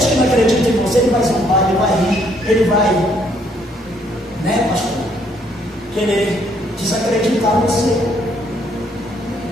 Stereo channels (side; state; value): both; normal; correlation 0.68